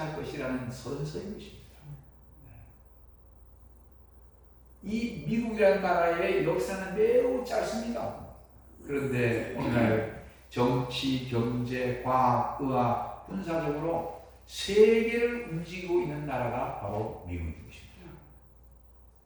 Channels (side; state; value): both; identical; correlation 1.00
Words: 것이라는 선서인 것입니다. 이 미국이라는 나라의 역사는 매우 짧습니다. 그런데 오늘날 정치, 경제, 과학, 의학, 군사적으로 세계를 움직이고 있는 나라가 바로 미국인 것입니다.